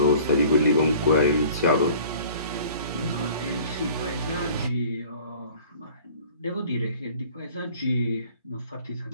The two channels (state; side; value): inverted; both; correlation -0.48